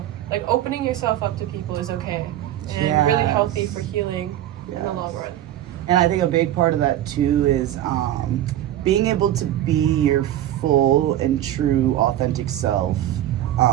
like opening yourself up to people is okay and really healthy for healing in the long run. And I think a big part of that too is being able to be your full and true authentic self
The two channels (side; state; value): left; quieter; 12.7 dB